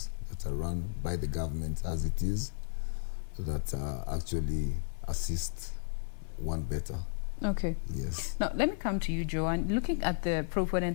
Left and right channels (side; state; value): right; silent; 55 dB below the other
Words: that are run by the government as it is, that actually assist one better. Okay. Yes. Now, let me come to you, Joanne. Looking at the